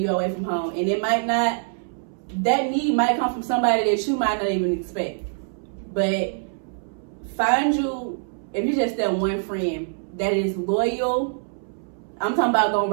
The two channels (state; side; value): silent; left; 62 dB below the other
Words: away from home. And that need might come from somebody that you might not even expect. But if you just that one friend that is loyal, I'm talking about gonna